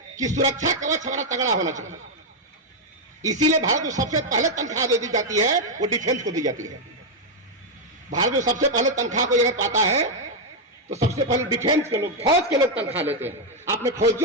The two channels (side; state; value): both; normal; correlation 0.01